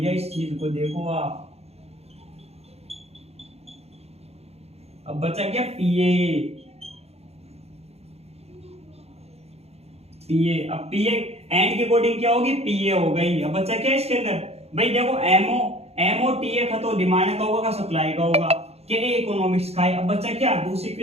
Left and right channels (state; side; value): late; left; 0.30 ms